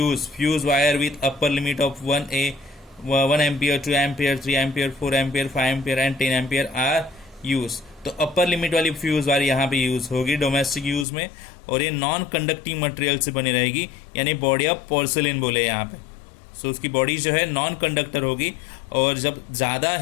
fuse wire with upper limit of 1 ampere, 2 ampere, 3 ampere, 4 ampere, 5 ampere and 10 ampere are use. तो अपर लिमिट वाली फ्यूज वायर यहाँ पे यूज होगी डोमेस्टिक यूज में, और ये नॉन कंडक्टिंग मटेरियल से बनी रहेगी, यानी बॉडी ऑफ पोर्सिलिन बोले यहाँ पे। सो उसकी बॉडी जो है नॉन कंडक्टर होगी, और जब ज़्यादा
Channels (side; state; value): right; drops out; at 11.1 s